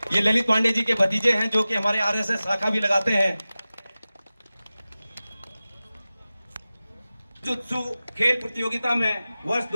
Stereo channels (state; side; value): inverted; both; correlation -0.96